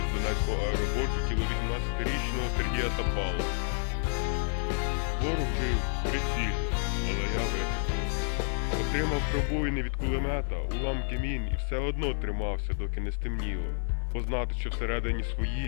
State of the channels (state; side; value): silent; right; digital silence